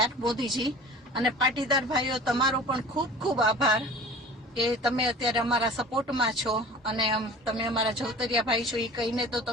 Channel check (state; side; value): normal; both; correlation 0.41